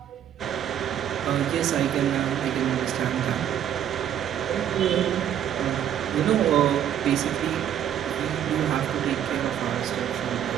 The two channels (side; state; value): left; quieter; 10.0 dB